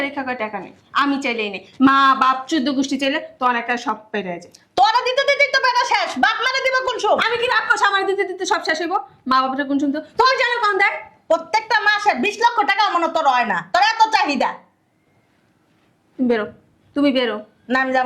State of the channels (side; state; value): both; identical; correlation 1.00